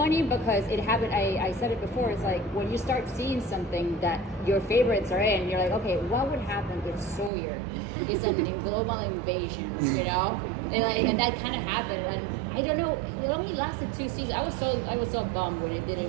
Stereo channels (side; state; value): left; drops out; at 7.3 s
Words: because it happened. I said it before. It's like when you start seeing something that your favorites are in, you're like, okay, what would happen if Sawyer is a global invasion? And that kind of happened. And I don't know. It only lasted 2 seasons. I was so bummed when it